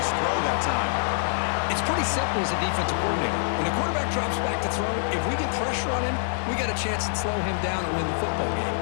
throw that time. It's pretty simple as a defensive coordinator. When the quarterback drops back to throw, if we get pressure on him, we got a chance to slow him down and win the football game.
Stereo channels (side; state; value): right; silent; 61 dB below the other